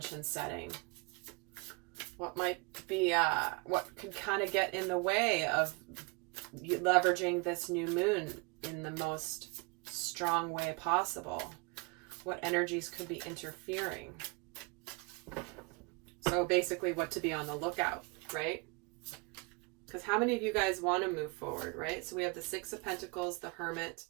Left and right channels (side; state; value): left; quieter; 30.3 dB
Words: setting. What might be, what could kind of get in the way of leveraging this new moon in the most strong way possible? What energies could be interfering? So basically what to be on the lookout, right? Because how many of you guys want to move forward, right? So we have the Six of Pentacles, the Hermit,